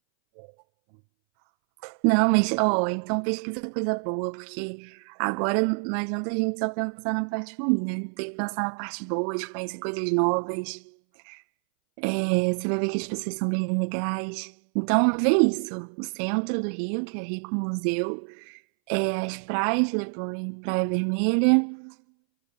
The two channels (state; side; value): silent; left; 61 dB below the other